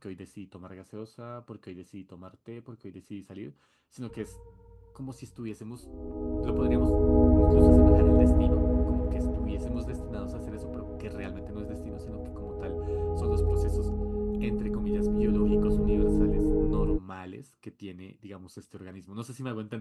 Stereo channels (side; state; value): both; identical; correlation 1.00